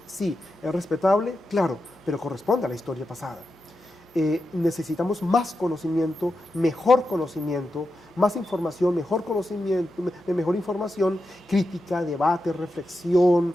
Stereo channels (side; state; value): both; normal; correlation 0.89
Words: sí. Es respetable, claro, pero corresponde a la historia pasada. Necesitamos más conocimiento, más información, mejor conocimiento, mejor información, crítica, debate, reflexión,